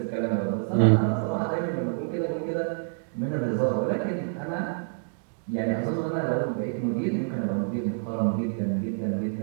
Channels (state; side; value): silent; left; digital silence